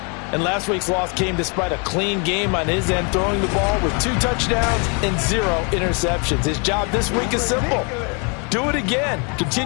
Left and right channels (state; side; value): quieter; right; 35.0 dB